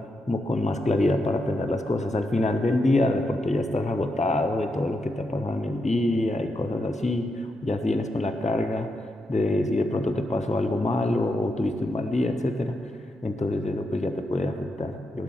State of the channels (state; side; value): normal; both; correlation 0.84